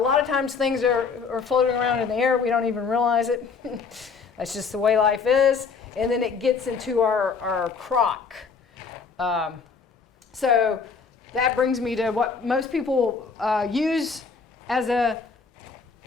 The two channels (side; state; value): right; quieter; 5.3 dB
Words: of times things are floating around in the air. We don't even realize it. That's just the way life is. And then it gets into our crock. So that brings me to what most people use as a